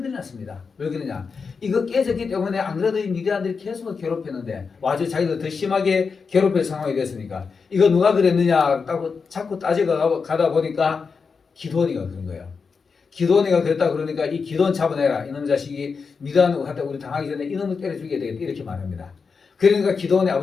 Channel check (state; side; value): quieter; right; 5.2 dB